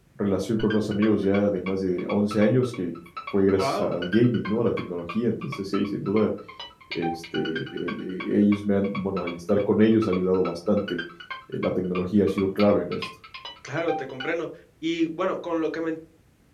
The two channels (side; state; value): both; identical; correlation 1.00